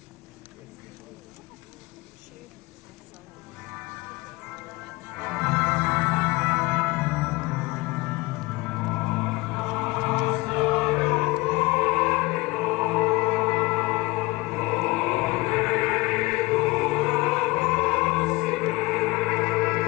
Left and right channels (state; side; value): quieter; right; 22.7 dB